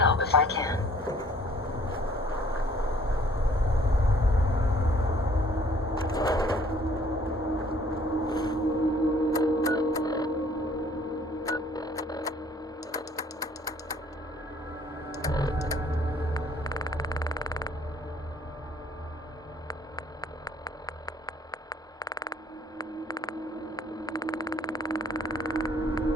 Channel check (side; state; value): both; normal; correlation 0.58